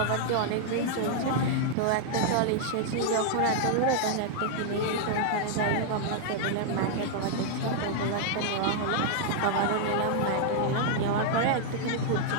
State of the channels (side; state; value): both; different; correlation 0.00